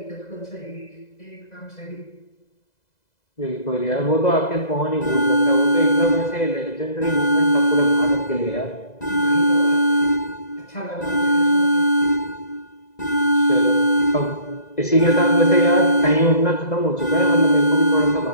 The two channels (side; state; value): right; late; 2.0 ms